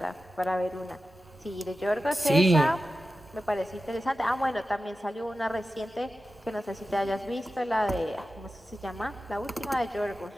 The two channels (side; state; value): both; normal; correlation 0.93